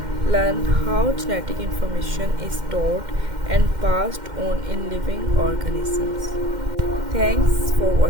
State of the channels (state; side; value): late; left; 2.1 ms